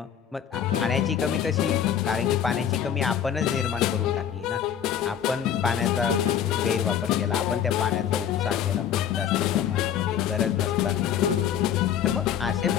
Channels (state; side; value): quieter; right; 9.1 dB